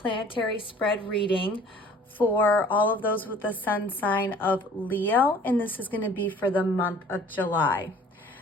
spread reading for all of those with the sun sign of Leo, and this is going to be for the month of July.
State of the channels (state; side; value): normal; both; correlation 0.50